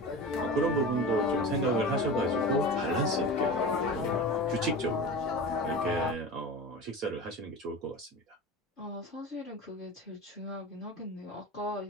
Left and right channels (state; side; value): normal; both; correlation 0.31